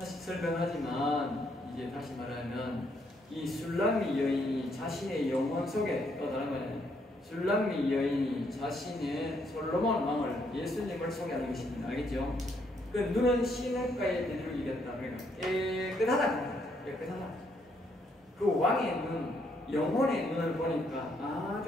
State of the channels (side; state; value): both; normal; correlation 0.73